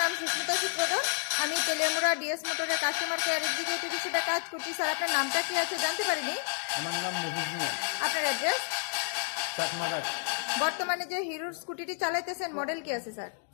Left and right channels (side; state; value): right; silent; digital silence